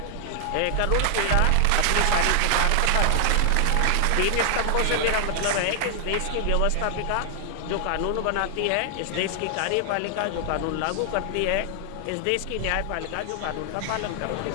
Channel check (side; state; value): both; different; correlation 0.00